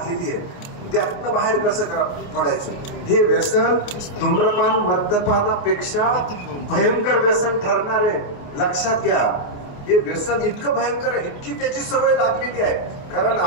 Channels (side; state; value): right; late; 28 ms